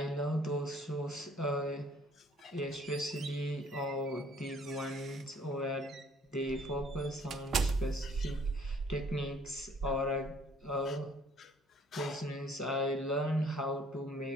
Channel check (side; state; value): both; normal; correlation 0.59